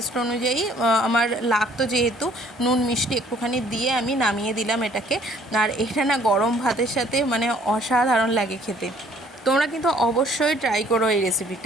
অনুযায়ী আমার লাগতো যেহেতু নুন মিষ্টি একটুখানি দিয়ে আমি নামিয়ে দিলাম এটাকে। আর এটা না গরম ভাতের সাথে মানে অসাধারণ লাগে খেতে, তোমরা কিন্তু অবশ্যই ট্রাই করো এই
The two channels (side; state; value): both; normal; correlation 0.59